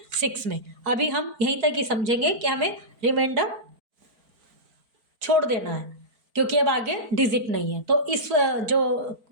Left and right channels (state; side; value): late; left; 4.4 ms